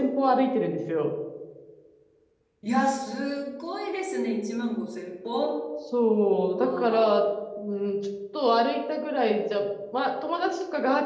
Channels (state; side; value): identical; both; correlation 1.00